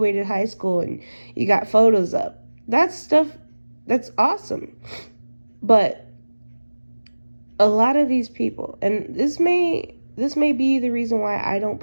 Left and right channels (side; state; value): both; inverted; correlation -1.00